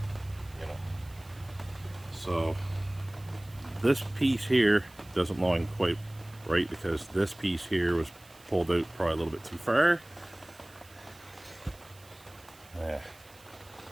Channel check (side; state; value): right; noise; hiss, 24 dB below the sound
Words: You know. So this piece here doesn't line quite right because this piece here was pulled out probably a little bit too far. Yeah.